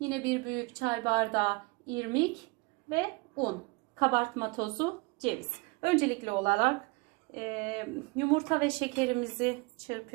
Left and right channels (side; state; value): left; quieter; 26.7 dB